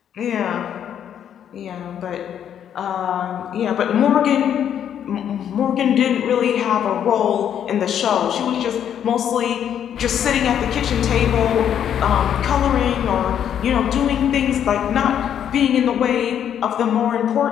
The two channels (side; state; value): right; quieter; 9.4 dB